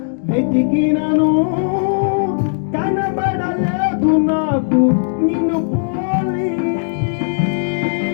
వెతికినను కనబడలేదు నాకు నిన్ను పోలి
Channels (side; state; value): right; silent; digital silence